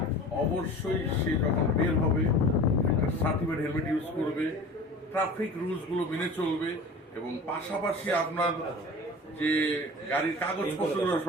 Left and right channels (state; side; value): normal; both; correlation 0.38